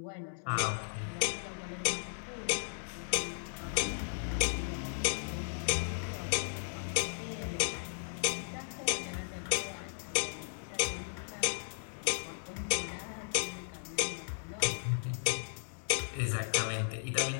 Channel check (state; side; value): silent; right; digital silence